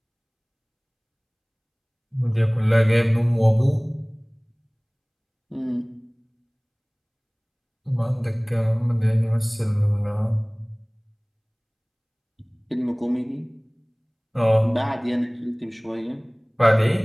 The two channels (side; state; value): both; identical; correlation 1.00